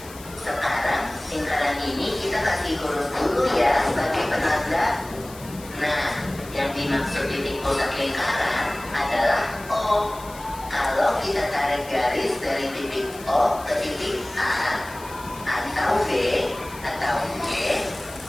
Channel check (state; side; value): noise; left; hiss, 18 dB below the sound